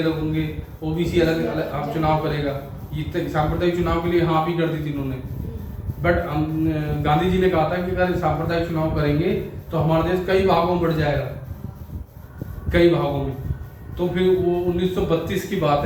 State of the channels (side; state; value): both; identical; correlation 1.00